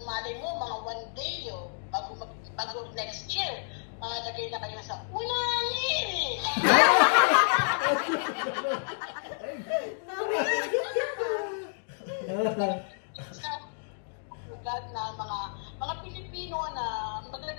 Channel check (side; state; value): right; silent; digital silence